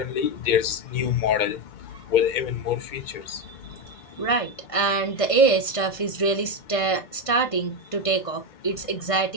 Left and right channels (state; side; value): late; right; 1.5 ms